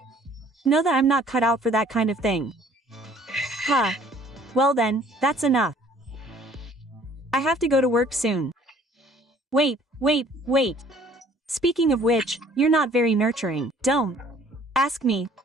know that I'm not cut out for that kind of thing. Huh. Well then, that's enough. I have to go to work soon. Wait. Speaking of which, you're not very nurturing. Don't ask me.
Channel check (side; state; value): both; normal; correlation 0.56